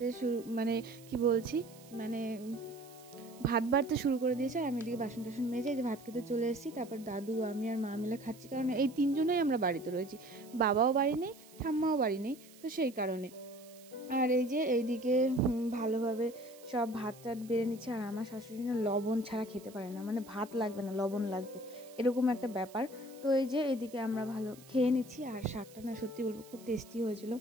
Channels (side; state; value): right; noise; hiss, 22 dB below the sound